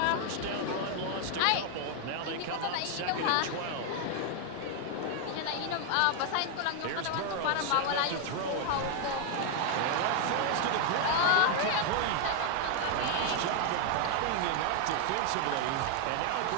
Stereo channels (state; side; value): different; both; correlation 0.00